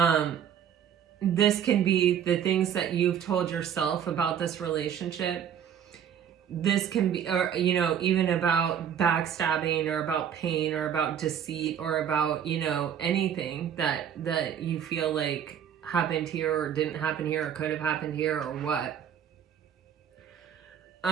This can be the things that you've told yourself about this relationship. This can be, or, even about backstabbing or about pain or about deceit or about, anything that you feel like happened here or didn't happen here or could have happened here or what.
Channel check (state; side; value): quieter; left; 8.8 dB